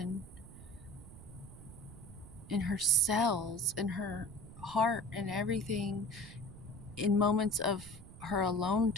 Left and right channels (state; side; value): noise; right; rumble, 17 dB below the sound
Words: in her cells, in her heart, and everything, in moments of her alone